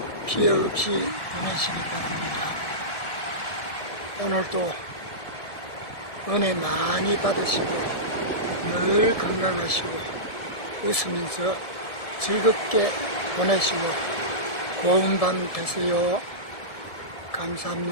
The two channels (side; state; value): right; late; 1.7 ms